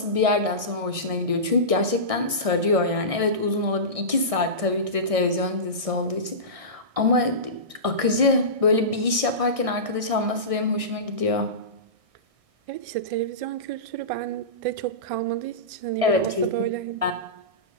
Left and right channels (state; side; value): late; left; 1.6 ms